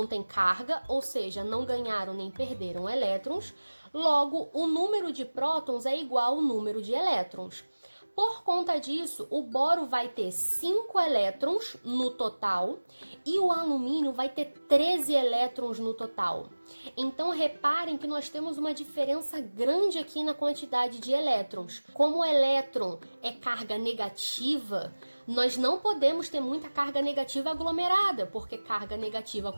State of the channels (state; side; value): inverted; both; correlation -1.00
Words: têm carga, ou seja, não ganharam nem perderam elétrons. Logo, o número de prótons é igual ao número de elétrons. Por conta disso, o boro vai ter 5 elétrons no total e o alumínio vai ter 13 elétrons no total. Então, reparem que nós temos uma diferença grande aqui na quantidade de elétrons. Como o elétron é carga negativa, nós não podemos ter muita carga negativa aglomerada, porque carga negativa